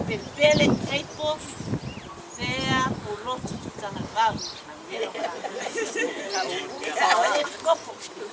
pele eipo fea o lote tanga vau olha copo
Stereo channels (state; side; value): identical; both; correlation 1.00